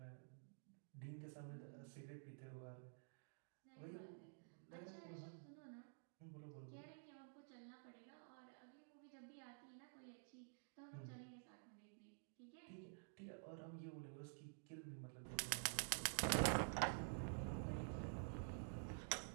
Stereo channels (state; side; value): silent; left; digital silence